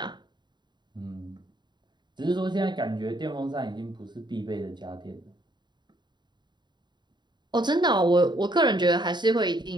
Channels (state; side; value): late; left; 0.21 ms